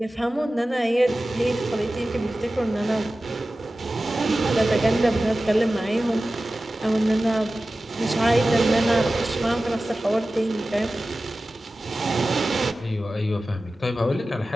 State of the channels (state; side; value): normal; both; correlation 0.96